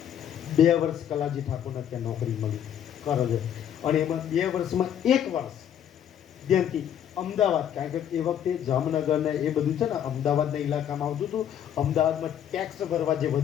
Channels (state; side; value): quieter; right; 9.7 dB